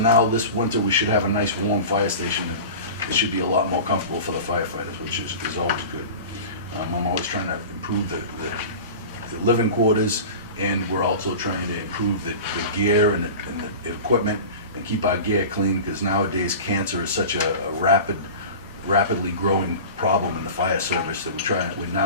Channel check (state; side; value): inverted; both; correlation -0.34